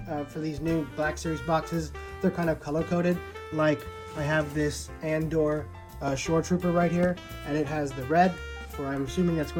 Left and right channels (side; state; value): both; identical; correlation 1.00